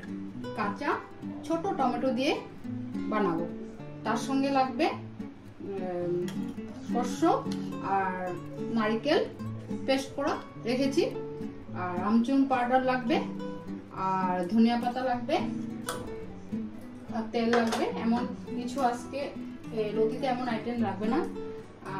কাঁচা ছোট টমেটো দিয়ে বানাবো। তার সঙ্গে লাগবে শস্য আর নারকেল পেস্ট করা রেখেছি, আর আমচুর পাউডার লাগবে, আর ধনিয়া পাতা লাগবে, আর তেল লাগবে। এমন কিছু আজকে লতিতে এমন আইটেম লাগবে না,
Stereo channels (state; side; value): identical; both; correlation 1.00